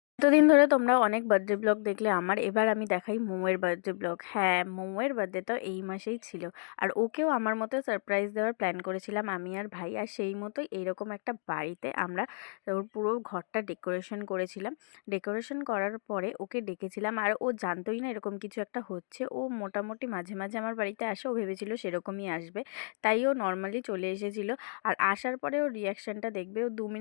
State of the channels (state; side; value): silent; right; digital silence